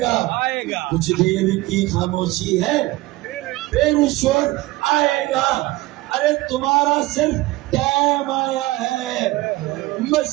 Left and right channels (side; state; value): left; quieter; 19.0 dB